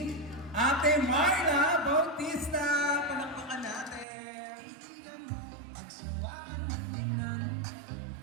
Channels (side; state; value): left; drops out; at 4.0 s